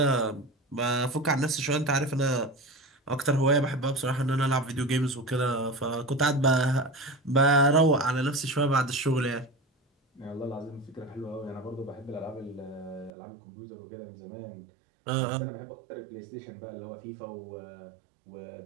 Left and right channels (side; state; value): left; drops out; at 13.1 s